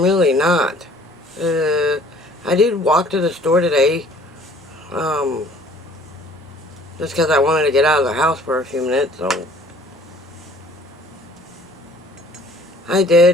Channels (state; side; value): normal; both; correlation 0.54